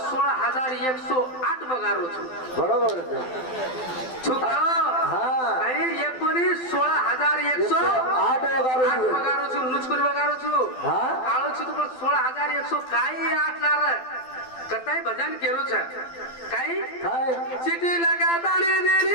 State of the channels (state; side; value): late; right; 12 ms